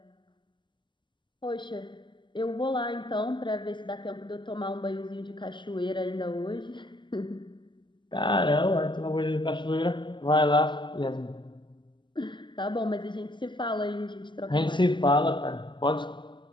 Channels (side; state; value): right; late; 0.23 ms